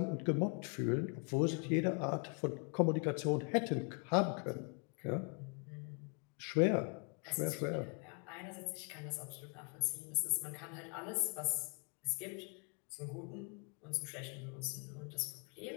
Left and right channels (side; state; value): right; quieter; 36.1 dB